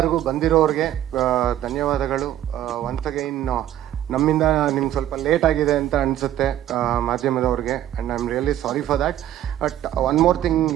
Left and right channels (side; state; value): left; quieter; 12.3 dB